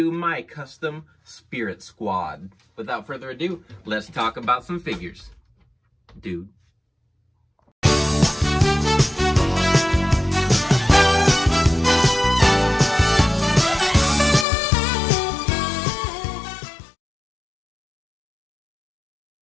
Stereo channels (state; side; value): drops out; right; at 14.5 s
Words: my custom Spirit Squad. Without further ado, let's talk about some figures. Dude.